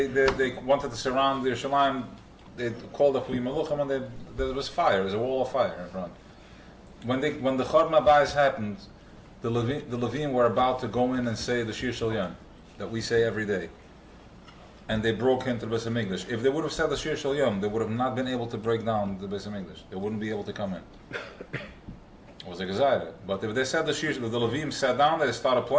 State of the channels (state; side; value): identical; both; correlation 1.00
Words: wanted to surround Yerushalayim. They called up Maluchim and there was fire. There was a wall of fire in front. When the Chorban Abayis happened, the Levim were about to go in and say the Shir Shel Yom that we say every day, and they broke into the Beis Hamikdash. If they would have said the Shir Shel Yom, they would have not been able to break down the Beis Hamikdash. They wouldn't be able to come in. It was a Gezaira. But if they said the Levim sat down, they started